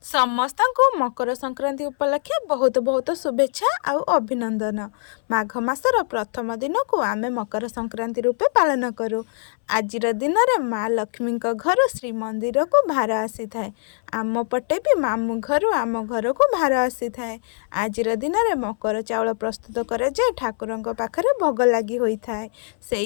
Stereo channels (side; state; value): right; silent; 64 dB below the other